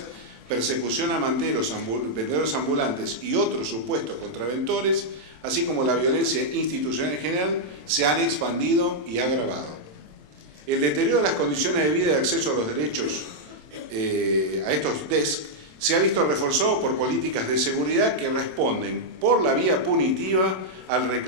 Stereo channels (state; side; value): late; left; 27 ms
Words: persecución a manteros, vendedores ambulantes y otros supuestos contraventores, así como la violencia institucional en general, se han expandido y agravado. El deterioro de las condiciones de vida y de acceso a los derechos a estos DESC se ha visto reforzado por políticas de seguridad que responden por la vía punitiva al